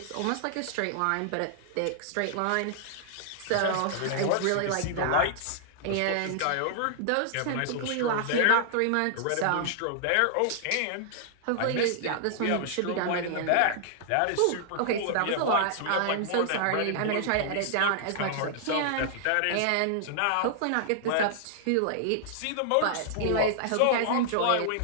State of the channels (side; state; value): both; different; correlation -0.01